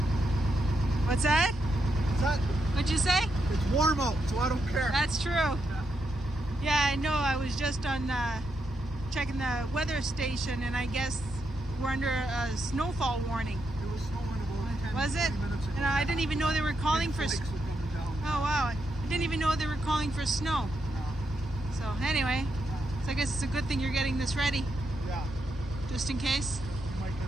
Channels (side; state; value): both; normal; correlation 0.82